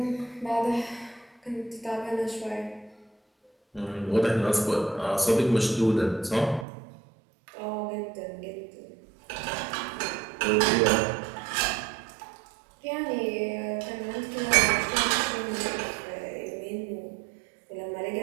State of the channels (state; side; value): drops out; left; at 6.7 s